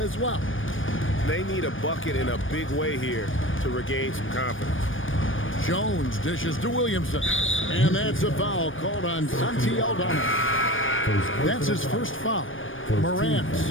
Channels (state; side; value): late; right; 0.57 ms